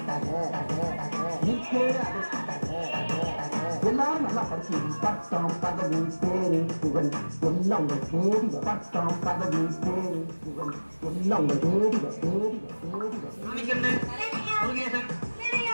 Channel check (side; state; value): both; inverted; correlation -1.00